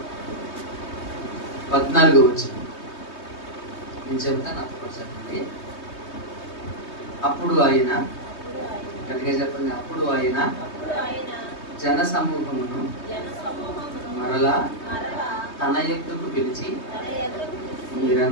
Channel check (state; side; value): late; right; 3.2 ms